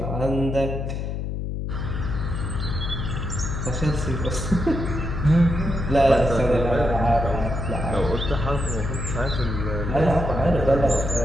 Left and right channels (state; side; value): noise; left; hum, 3 dB below the sound